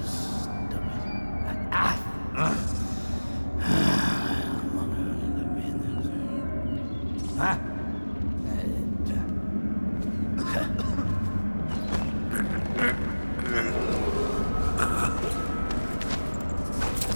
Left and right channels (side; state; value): both; inverted; correlation -1.00